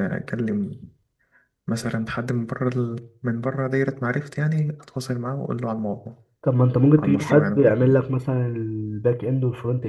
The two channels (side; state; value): both; identical; correlation 1.00